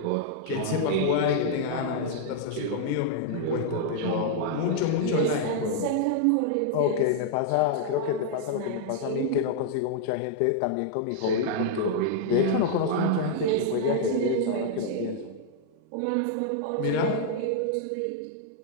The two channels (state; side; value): different; both; correlation -0.01